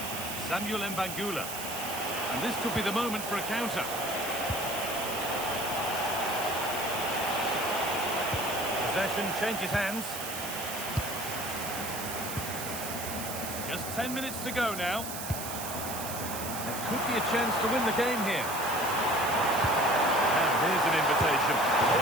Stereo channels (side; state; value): right; noise; hiss, 7 dB below the sound